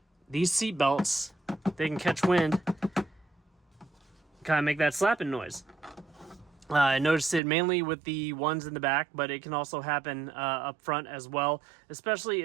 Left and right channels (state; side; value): drops out; left; at 7.4 s